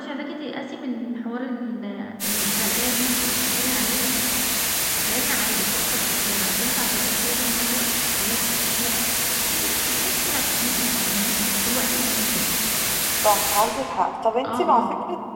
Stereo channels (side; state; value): both; identical; correlation 1.00